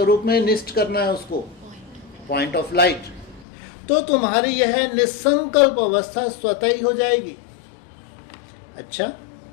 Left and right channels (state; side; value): drops out; right; at 3.5 s